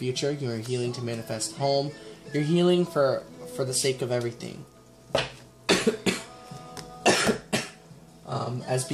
You are healing to manifest home. You're healing for the sake of everything. As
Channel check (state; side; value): identical; both; correlation 1.00